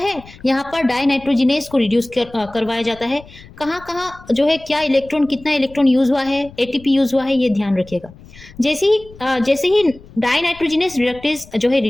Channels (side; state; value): left; noise; rumble, 21 dB below the sound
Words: यहाँ पर डाइनाइट्रोजिनेस को रिड्यूस करवाया जाता है। कहाँ कहाँ जो है क्या इलेक्ट्रॉन, कितना इलेक्ट्रॉन यूज हुआ है, एटीपी यूज हुआ है, ये ध्यान रखिएगा। जैसे ही डाइनाइट्रोजिनेस रिडक्टेज जो है